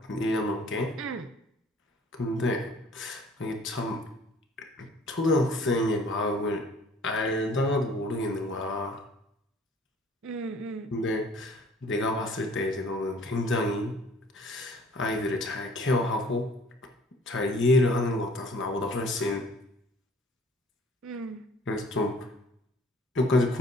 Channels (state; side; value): normal; both; correlation 0.54